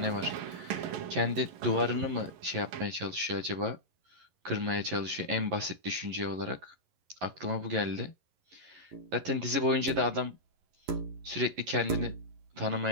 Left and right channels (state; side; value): late; left; 11 ms